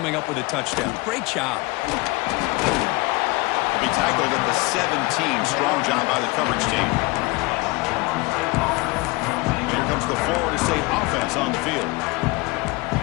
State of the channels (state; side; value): quieter; right; 23.7 dB